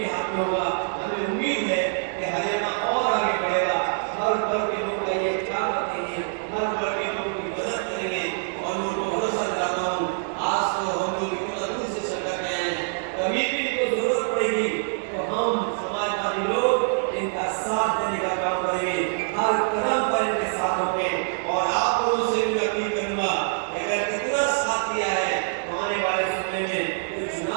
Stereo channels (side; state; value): left; silent; digital silence